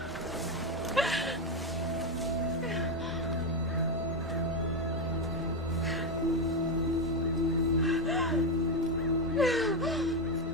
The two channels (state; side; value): normal; both; correlation 0.08